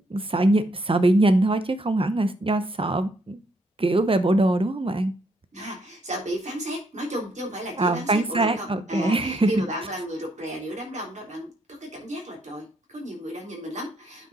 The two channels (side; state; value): both; normal; correlation 0.74